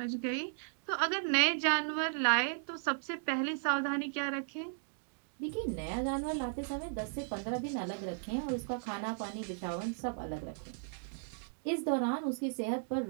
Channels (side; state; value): left; silent; digital silence